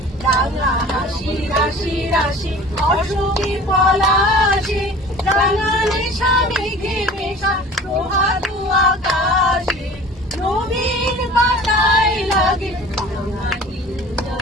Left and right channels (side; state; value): both; normal; correlation 0.43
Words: রাঙা হাসি রাশি রাশি অসুখী পলাশে, রাঙালে স্বামীকে মেশা প্রভাতু আকাশে, নবীন পাতায় লাগে রাঙা